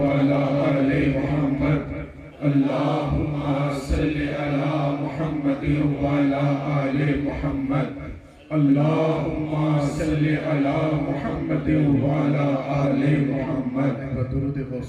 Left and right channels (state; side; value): identical; both; correlation 1.00